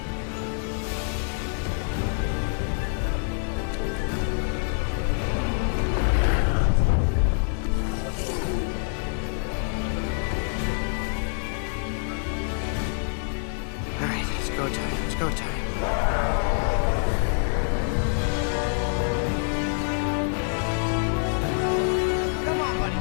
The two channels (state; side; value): silent; right; 56 dB below the other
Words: right, it's go time. It's go time.